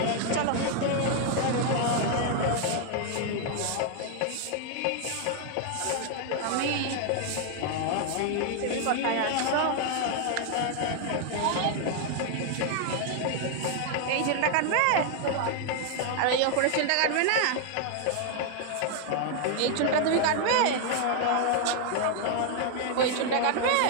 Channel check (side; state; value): both; different; correlation 0.00